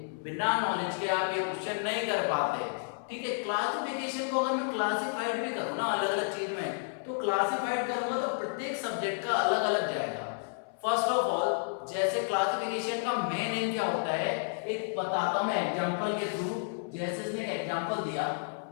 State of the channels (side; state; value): right; silent; 57 dB below the other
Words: बिना नॉलेज के आप ये क्वेश्चन नहीं कर पाते। ठीक है, क्लासिफिकेशन को अगर मैं क्लासिफाइड भी करूँ ना अलग अलग चीज में, तो क्लासिफाइड करूंगा तो प्रत्येक सब्जेक्ट का अलग अलग जाएगा। फर्स्ट ऑफ ऑल, जैसे क्लासिफिकेशन का मेन एम क्या होता है, एक बताता हूं मैं एग्जांपल के थ्रू। जैसे इसने एक एग्जांपल दिया,